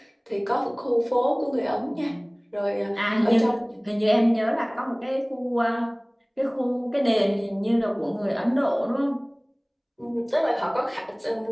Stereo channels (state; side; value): identical; both; correlation 1.00